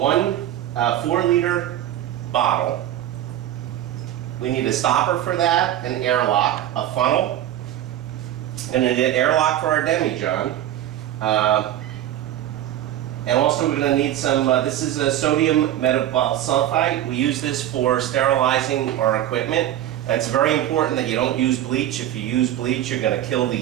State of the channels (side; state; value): left; quieter; 12.2 dB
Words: 4-liter bottle. We need a stopper for that, an airlock, a funnel, and an airlock for our demijohn. And also we're going to need some, this is a sodium metabolsulfite. We use this for sterilizing our equipment. It's very important that you don't use bleach. If you use bleach, you're going to kill the